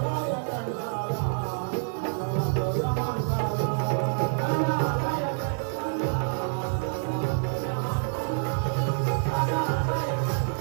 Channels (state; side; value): silent; left; digital silence